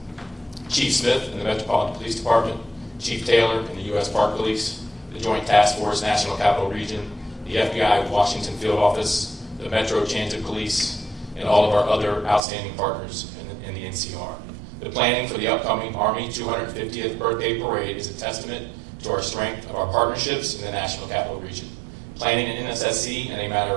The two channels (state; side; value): drops out; left; at 12.4 s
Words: Chief Smith in the Metropolitan Police Department, Chief Taylor in the U.S. Park Police, the Joint Task Force National Capital Region, the FBI Washington Field Office, the Metro Transit Police, and all of our other outstanding partners in the NCR. The planning for the upcoming Army 250th birthday parade is a testament to our strength of our partnerships in the National Capital Region. Planning an NSSC in a matter